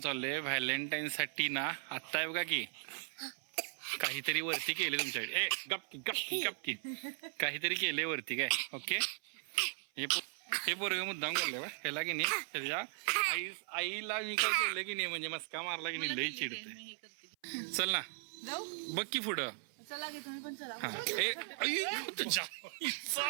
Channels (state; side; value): silent; left; 53 dB below the other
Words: व्हॅलेंटाईन साठी ना. आत्ता आहे बघा की काहीतरी वरती केले तुमच्याकडे. ए गपकी गपकी गपकी. काहीतरी केले वरती काय. ओके. हे पोरग मुद्दाम करले बा ह्याला की नाही. त्याच्या आईला मी काय केलं की नाही म्हणजे मस्का मारला की नाही लई चिडते. चल ना जाऊ. बघ की पुढं. चला की तुम्ही पण चला. हा. ए आई, तुझ्या